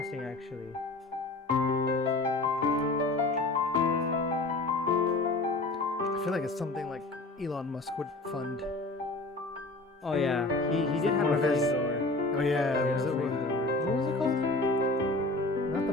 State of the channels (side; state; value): right; quieter; 3.0 dB